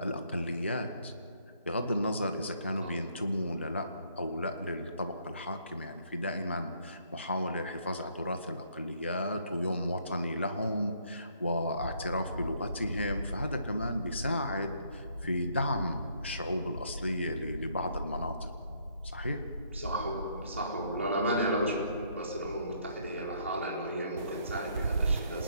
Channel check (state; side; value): inverted; both; correlation -0.68